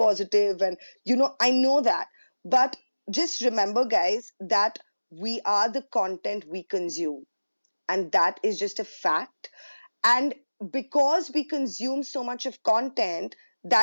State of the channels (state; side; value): inverted; both; correlation -1.00